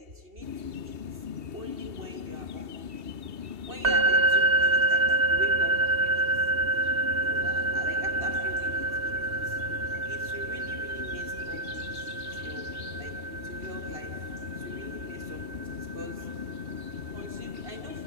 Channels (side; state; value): left; late; 2.7 ms